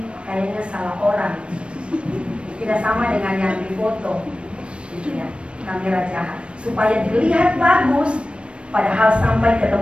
kayaknya salah orang, tidak sama dengan yang di foto, gitu ya, kamera jahat, supaya dilihat bagus, padahal sampai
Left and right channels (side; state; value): left; late; 0.058 ms